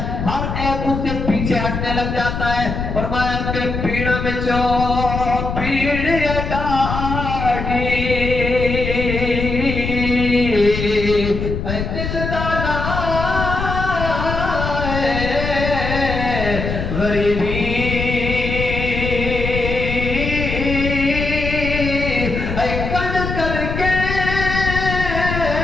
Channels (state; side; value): noise; left; rumble, 4 dB below the sound